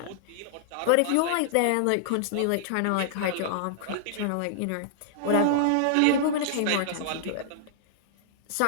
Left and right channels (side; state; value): both; different; correlation -0.01